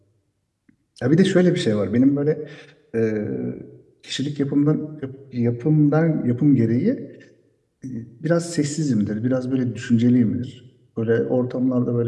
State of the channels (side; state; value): both; identical; correlation 1.00